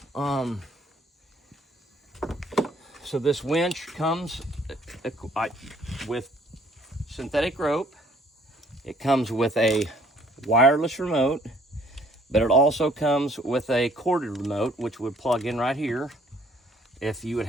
So this winch comes with synthetic rope. It comes with a wireless remote, but it also comes with a corded remote, which would plug in right here if you would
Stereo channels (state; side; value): normal; both; correlation 0.60